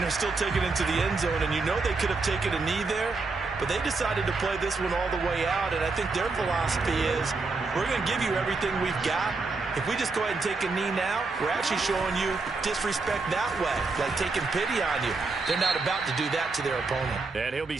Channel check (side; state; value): left; quieter; 3.9 dB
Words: they're still taking it to the end zone. And you know they could have taken a knee there, but they decided to play this one all the way out. And I think their philosophy is, we're going to give you everything we've got. If we just go ahead and take a knee now, we're actually showing you disrespect that way, like taking pity on you. They're not about to do that to their opponent. And he'll be